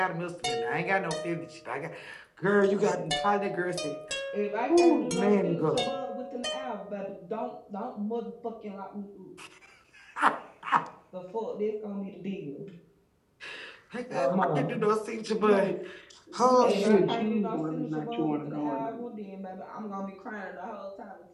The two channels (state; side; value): identical; both; correlation 1.00